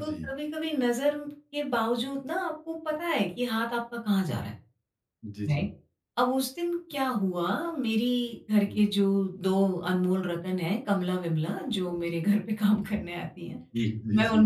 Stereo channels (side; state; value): both; identical; correlation 1.00